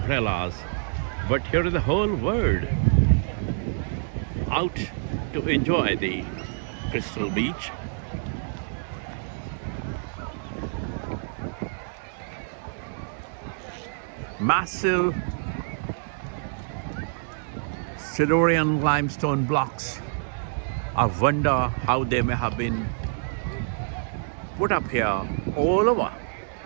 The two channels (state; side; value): silent; left; digital silence